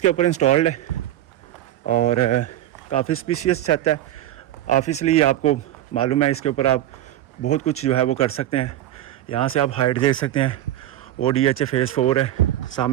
ऊपर इंस्टॉल्ड है और काफ़ी स्पेशियस छत है। ऑब्वियसली आपको मालूम है इसके ऊपर आप बहुत कुछ जो है वो कर सकते हैं। यहाँ से आप हाइट देख सकते हैं, ODH फेज़ 4 है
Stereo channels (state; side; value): quieter; left; 13.3 dB